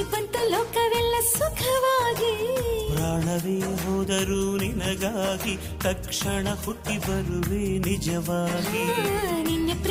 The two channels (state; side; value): identical; both; correlation 1.00